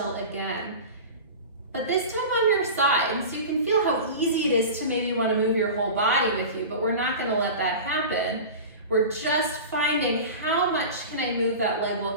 again. but this time on your side, so you can feel how easy it is to maybe want to move your whole body with you, but we're not going to let that happen. We're just finding how much can I move that leg while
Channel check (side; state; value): both; inverted; correlation -0.32